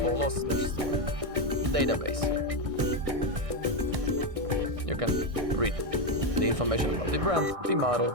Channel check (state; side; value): late; left; 1.6 ms